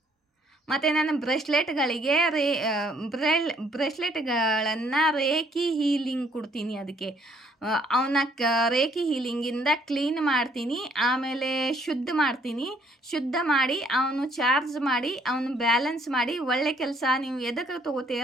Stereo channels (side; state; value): both; normal; correlation 0.65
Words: ಮತ್ತು ನಾನು ಬ್ರೇಸ್ಲೆಟ್ಗಳಿಗೆ ಬ್ರೇಸ್ಲೆಟ್ಗಳನ್ನು ರೇಖಿ ಹೀಲಿಂಗ್ ಕೊಡ್ತೀನಿ. ಅದಕ್ಕೆ ಅವನ್ನ ರೇಖಿ ಹೀಲಿಂಗಿಂದ ಕ್ಲೀನ್ ಮಾಡ್ತೀನಿ, ಆಮೇಲೆ ಶುದ್ಧ ಮಾಡಿ ಅವನು ಚಾರ್ಜ್ ಮಾಡಿ ಅವನು ಬ್ಯಾಲೆನ್ಸ್ ಮಾಡಿ ಒಳ್ಳೆ ಕೆಲಸ ನೀವು ಎದಕ್ಕೆ